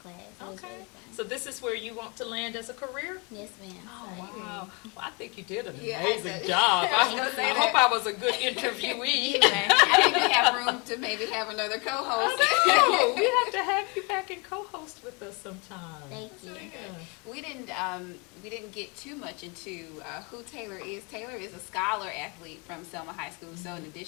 It was really fun. So this is where you want to land as a career? Yes, ma'am. Oh, wow. Well, I think you did an amazing job. I hope I was a good interviewee. I think we have room to maybe have another co-host. I know. We have to have you back and co-host with us sometime. Thank you. Yeah. We didn't get too much into who Taylor is. Taylor is a scholar athlete from Selma High School. So in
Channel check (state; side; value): quieter; right; 31.0 dB